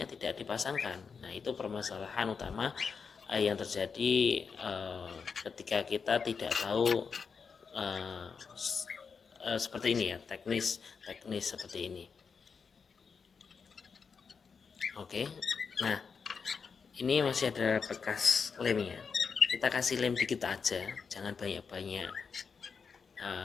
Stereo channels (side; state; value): right; quieter; 5.7 dB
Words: tidak dipasangkan. Nah itu permasalahan utama yang terjadi ketika kita tidak tahu uh, seperti ini ya, teknis seperti ini. Oke, nah ini masih ada bekas lemnya, kita kasih lem dikit aja, jangan banyak-banyak.